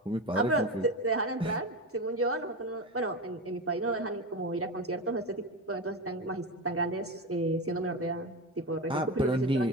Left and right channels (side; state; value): both; normal; correlation 0.20